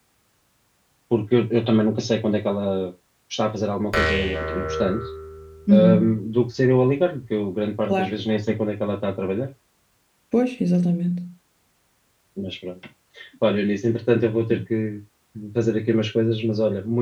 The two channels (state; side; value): identical; both; correlation 1.00